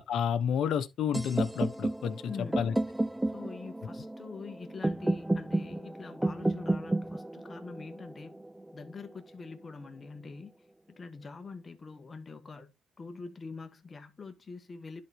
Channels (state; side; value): normal; both; correlation 0.86